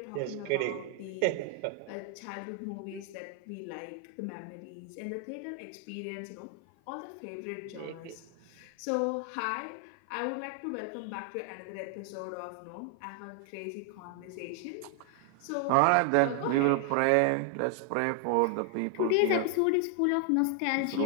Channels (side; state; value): both; different; correlation 0.00